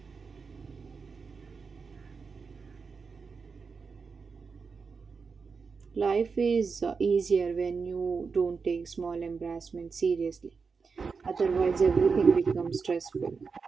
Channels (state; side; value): quieter; left; 5.1 dB